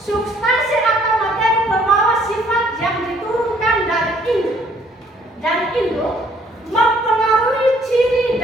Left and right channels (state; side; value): normal; both; correlation 0.63